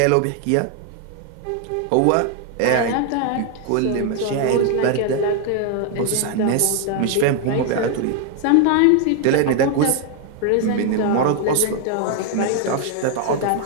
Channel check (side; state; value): both; different; correlation 0.00